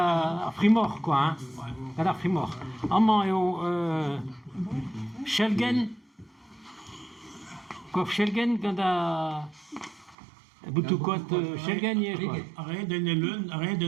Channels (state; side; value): drops out; left; at 10.2 s